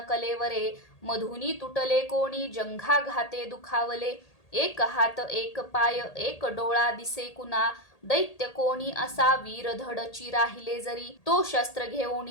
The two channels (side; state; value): right; late; 1.8 ms